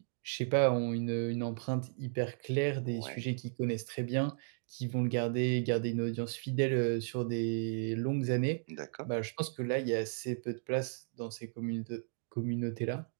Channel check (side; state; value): left; silent; digital silence